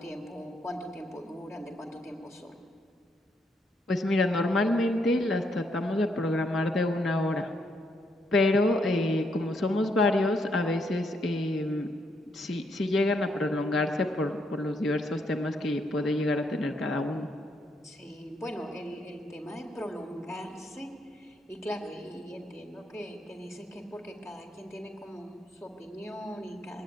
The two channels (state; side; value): normal; both; correlation 0.75